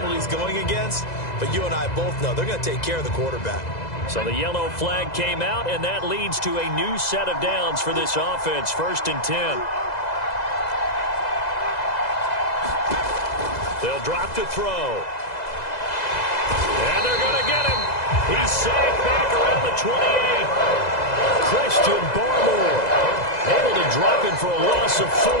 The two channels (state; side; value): late; right; 2.0 ms